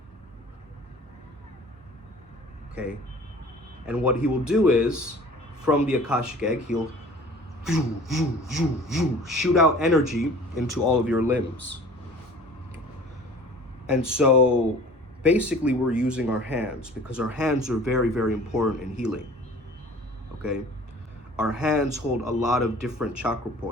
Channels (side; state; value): both; normal; correlation 0.46